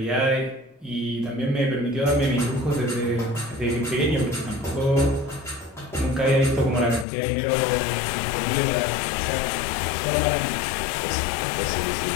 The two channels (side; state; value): right; drops out; at 7.1 s